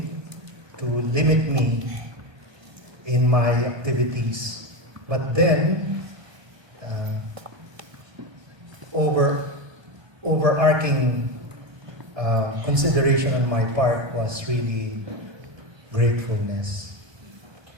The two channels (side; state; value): left; late; 1.2 ms